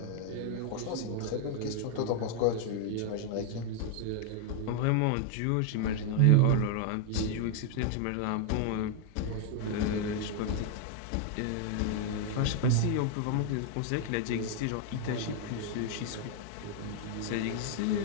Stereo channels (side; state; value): both; different; correlation 0.01